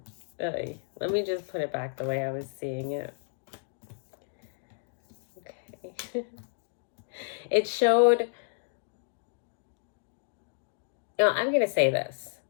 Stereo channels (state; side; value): silent; right; digital silence